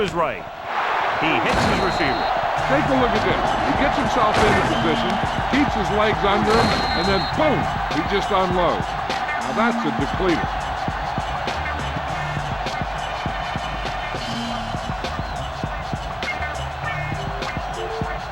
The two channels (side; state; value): both; identical; correlation 1.00